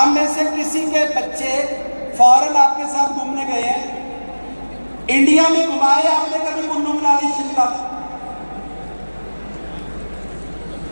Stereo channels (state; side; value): inverted; both; correlation -1.00